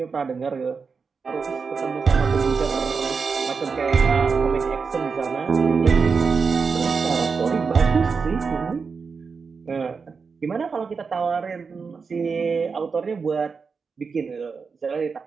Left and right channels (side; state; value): left; quieter; 5.2 dB